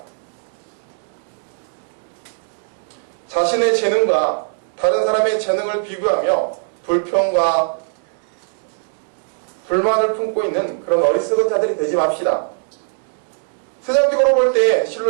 자신의 재능과 다른 사람의 재능을 비교하며 불평과 불만을 품고 있는 그런 어리석은 자들이 되지 맙시다. 세상적으로 볼 때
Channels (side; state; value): left; silent; digital silence